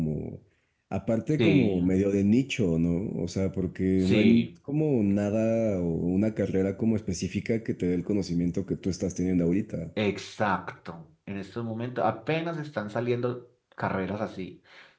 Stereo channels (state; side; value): identical; both; correlation 1.00